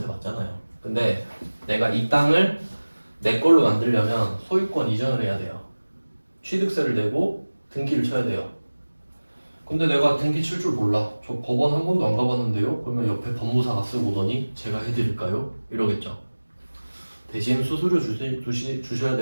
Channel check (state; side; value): inverted; both; correlation -1.00